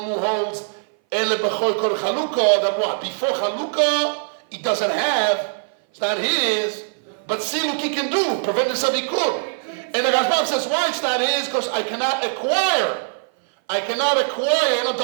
who holds Ele Bechor Kol Chalukah, that what? Before Chalukah, he doesn't have, it's not his, but siluk he can do, prevent himself he could. And the Rashbam says, why it's not his? Because I cannot acquire. The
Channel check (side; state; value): left; silent; 59 dB below the other